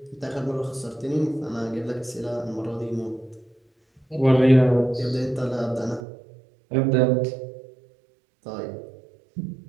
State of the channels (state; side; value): drops out; left; at 6.1 s